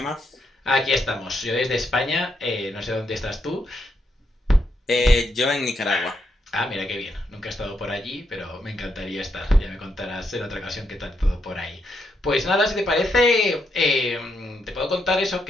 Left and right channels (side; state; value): both; normal; correlation 0.80